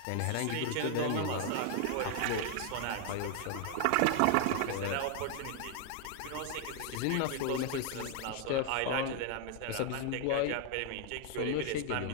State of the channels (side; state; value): both; different; correlation 0.00